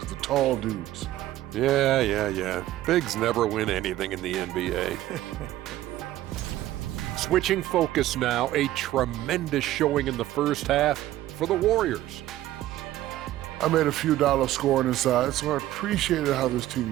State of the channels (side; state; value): left; quieter; 14.5 dB